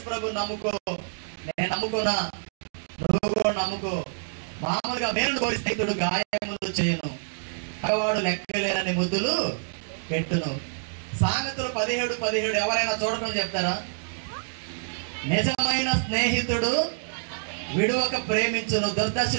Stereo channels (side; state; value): left; silent; digital silence